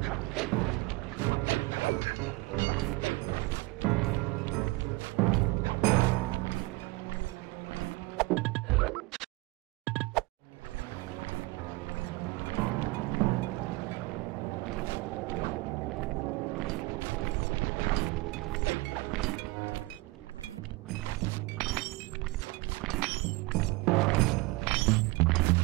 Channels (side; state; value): left; quieter; 23.3 dB